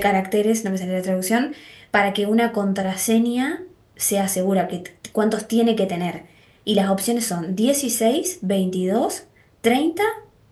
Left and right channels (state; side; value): identical; both; correlation 1.00